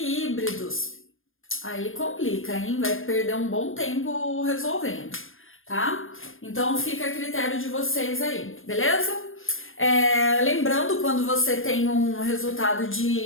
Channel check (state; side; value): late; right; 0.59 ms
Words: aí complica, hein? Vai perder um bom tempo resolvendo, tá? Então, fica a critério de vocês aí, beleza? Lembrando, quando você tem um resultado